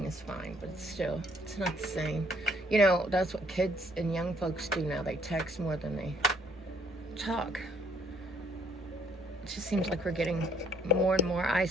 is fine, but still, it's not the same. You know, that's what kids and young folks do now. They text more than they talk. It just seems like we're getting more and more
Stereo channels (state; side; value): normal; both; correlation 0.65